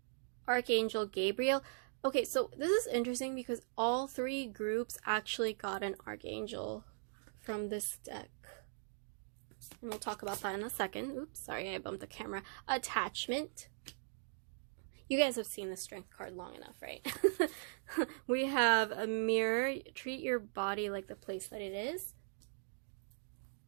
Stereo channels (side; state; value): left; silent; digital silence